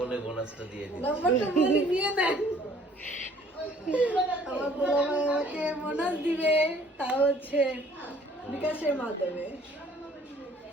বোনাসটা দিয়ে দিই। নাম্বারটা বলে নিয়ে নেন। আমার বড় ভাই আমাকে বোনাস দিবে, তা হচ্ছে বিকাশের মাধ্যমে।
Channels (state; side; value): normal; both; correlation 0.57